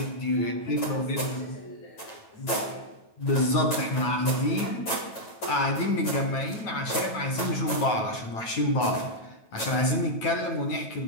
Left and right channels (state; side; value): late; right; 9.1 ms